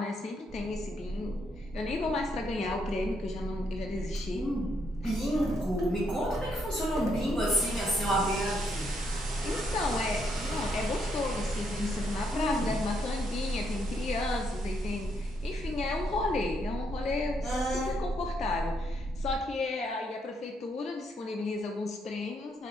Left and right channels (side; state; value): both; normal; correlation 0.75